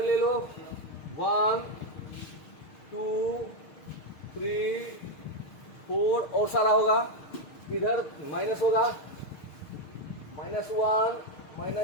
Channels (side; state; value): right; late; 6.5 ms